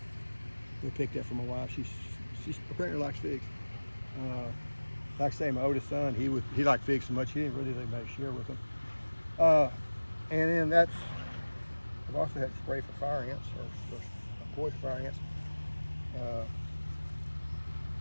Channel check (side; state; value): both; inverted; correlation -1.00